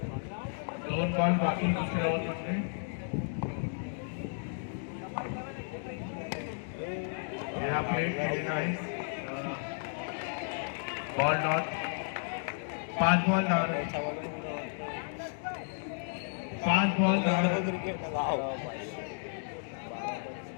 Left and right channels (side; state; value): right; silent; digital silence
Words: 2 ball बाकी दुसऱ्या ओव्हर मध्ये. हा प्लेट केलेला आहे. Ball not 5 ball 10 run 5 ball 10 run